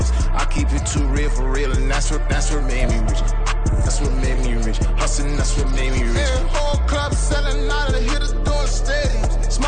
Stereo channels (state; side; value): identical; both; correlation 1.00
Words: I keep it too real for real, and that's what made me rich. That's what made me rich. Hustling, that's what made me rich. Yeah, whole club selling out of the hitters doing stadiums.